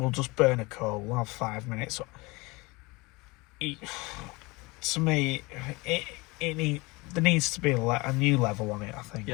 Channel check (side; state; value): right; quieter; 24.4 dB